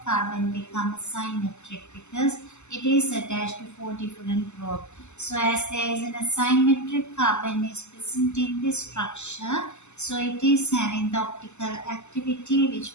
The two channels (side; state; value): right; late; 0.83 ms